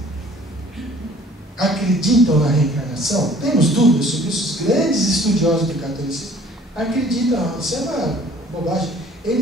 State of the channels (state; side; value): normal; both; correlation 0.53